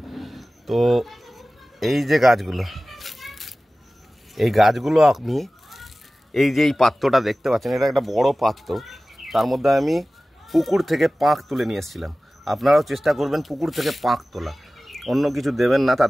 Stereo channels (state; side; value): normal; both; correlation 0.97